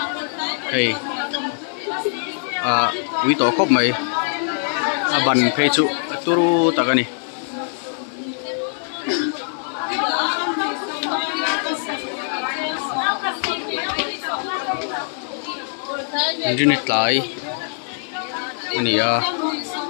hei pui to khop mai ban phei chu turu takani Injini tlai ania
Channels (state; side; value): silent; right; digital silence